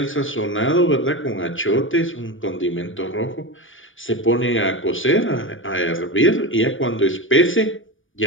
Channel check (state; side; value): late; right; 0.57 ms